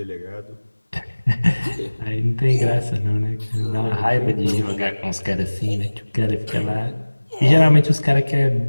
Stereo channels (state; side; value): inverted; both; correlation -1.00